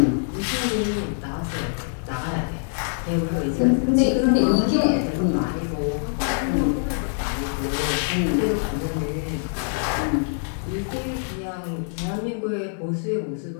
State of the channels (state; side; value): silent; right; digital silence